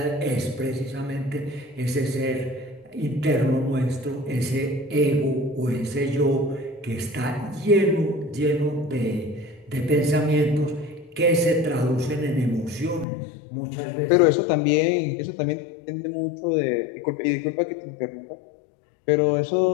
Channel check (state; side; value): drops out; right; at 13.1 s